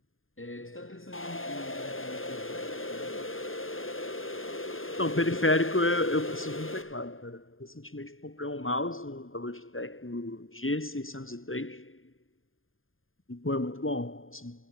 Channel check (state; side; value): late; right; 0.59 ms